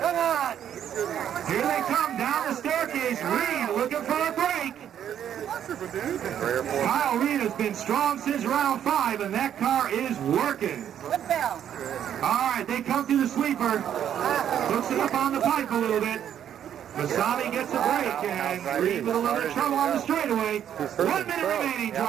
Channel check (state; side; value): quieter; left; 9.7 dB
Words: on. Here they come down the staircase. Reed looking for a break. Kyle Reed has been strong since round 5, and that car is working. All right, they come through the sweeper. Hooks it up on the pipe a little bit. Masami gets a break, and Reed with a little bit of trouble on the straightaway. 1 minute remaining,